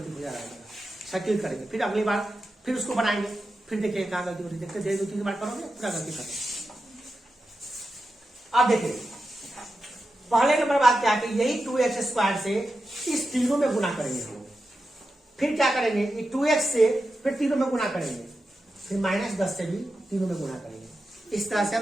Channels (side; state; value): both; normal; correlation 0.90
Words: हो जा रहा है, सेटिल करेंगे, फिर अगली बार फिर उसको बनाएंगे, फिर देखेंगे कहाँ गलती हो रही है, देखते धीरे 2-3 बार करोगे पूरा गलती खत्म। अब देखिए पहले नंबर बात क्या है कि यही 2x² से इस तीनों में गुना करेंगे हम, फिर क्या करेंगे ये 2x से फिर तीनों में गुना करेंगे, फिर -10 से भी तीनों में गुना करेंगे। इस तरह से हम